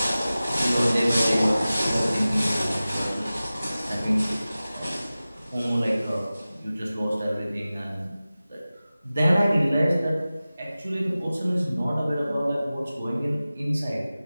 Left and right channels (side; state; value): both; inverted; correlation -0.96